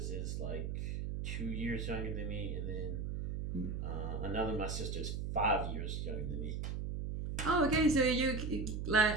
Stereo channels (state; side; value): noise; right; hum, 3 dB below the sound